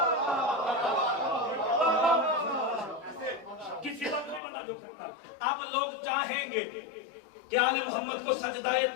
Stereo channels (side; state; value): right; drops out; at 4.4 s